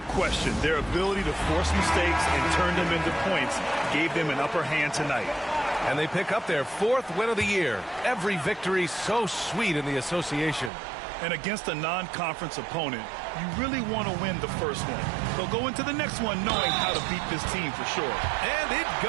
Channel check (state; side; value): drops out; left; at 10.7 s